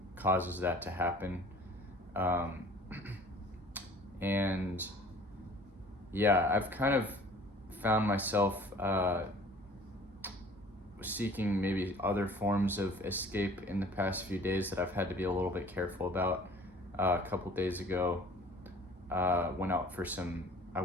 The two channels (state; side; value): normal; both; correlation 0.49